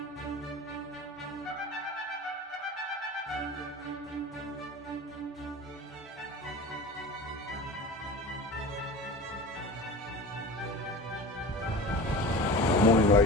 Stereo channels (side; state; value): both; normal; correlation 0.34